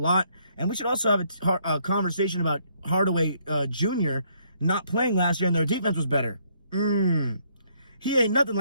And we should also have a conversation about Hardaway Jr. not playing last year and their defense was better. He ain't nothing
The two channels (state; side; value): inverted; both; correlation -0.69